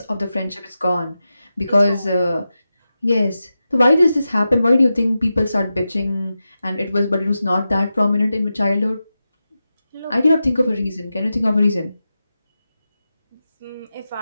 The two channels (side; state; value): both; inverted; correlation -0.91